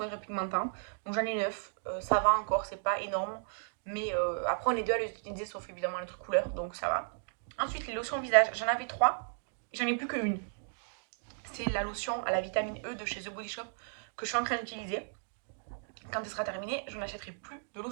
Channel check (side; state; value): left; silent; digital silence